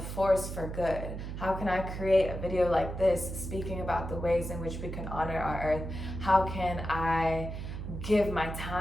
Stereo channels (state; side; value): noise; right; hum, 7 dB below the sound